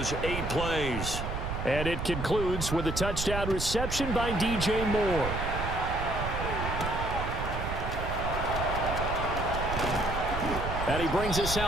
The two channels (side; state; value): right; noise; rumble, 4 dB below the sound